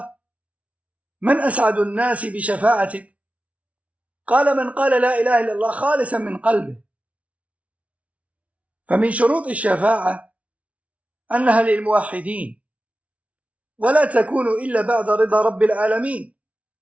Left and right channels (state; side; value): late; left; 0.065 ms